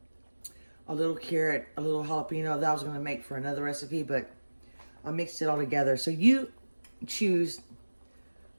a little carrot, a little jalapeno that I was going to make for another recipe, but I mixed it all together. So you choose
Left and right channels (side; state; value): both; inverted; correlation -1.00